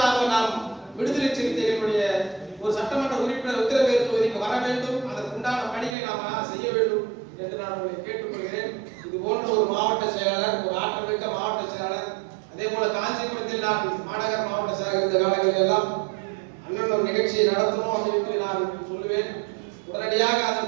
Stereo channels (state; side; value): drops out; left; at 5.9 s